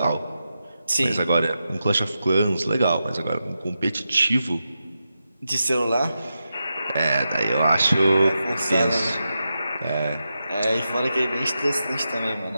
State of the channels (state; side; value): inverted; both; correlation -0.89